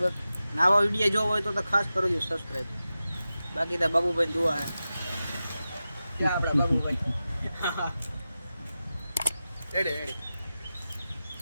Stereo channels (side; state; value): both; inverted; correlation -0.93